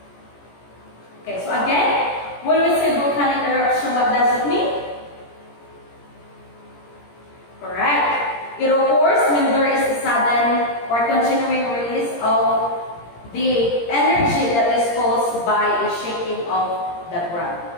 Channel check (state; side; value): late; right; 17 ms